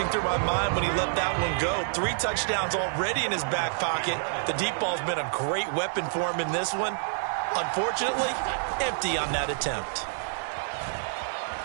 through my mind when he let that one go. 3 touchdowns already in his back pocket. The deep ball's been a great weapon for him in this one. Unfortunately, empty on that attempt.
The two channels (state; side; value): silent; left; 59 dB below the other